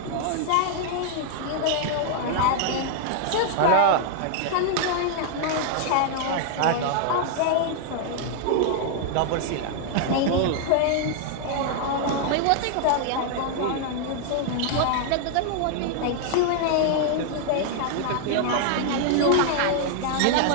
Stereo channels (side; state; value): both; different; correlation 0.00